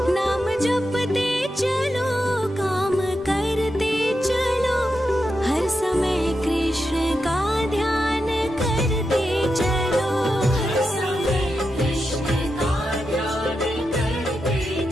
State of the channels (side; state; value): both; normal; correlation 0.87